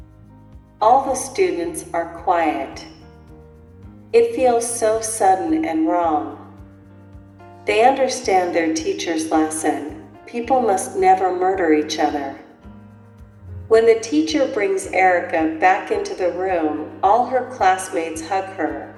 All the students are quiet. It feels so sudden and wrong. They understand their teacher's lesson. People must never murder each other. When the teacher brings Erica back into the room, all her classmates hug her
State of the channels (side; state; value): both; identical; correlation 1.00